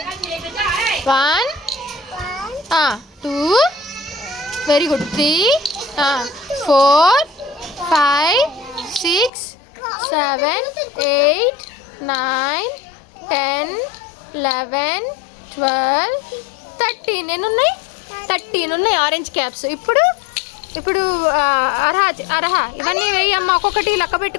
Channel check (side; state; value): right; drops out; at 9.3 s